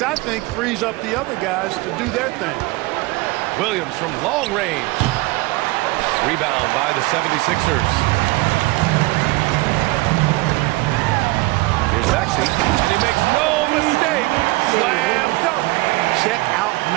I think frees up the other guys to do their thing. Williams from long range. Rebound by the 76ers. Here's Maxey, and he makes no mistake. Slam dunk. Check out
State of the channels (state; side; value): quieter; left; 21.8 dB